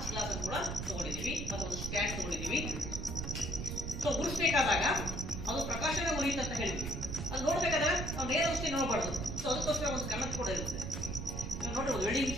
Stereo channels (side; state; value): right; noise; rumble, 4 dB below the sound